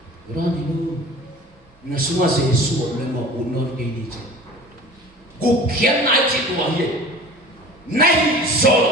berani lu na semua Jesus memang unor ini mungkin naik citu aja Nahi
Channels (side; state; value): both; normal; correlation 0.41